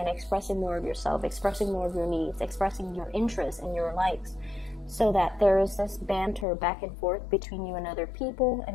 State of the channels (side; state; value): right; drops out; at 6.5 s